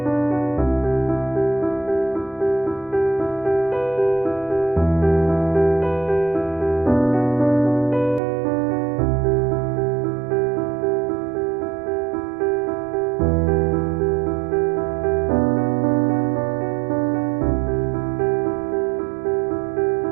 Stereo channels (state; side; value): drops out; left; at 8.2 s